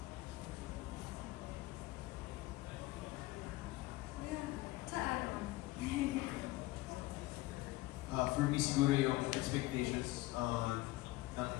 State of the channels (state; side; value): quieter; right; 19.0 dB